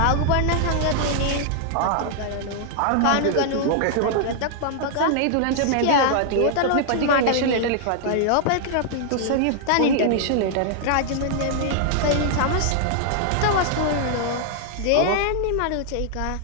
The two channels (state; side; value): different; both; correlation 0.00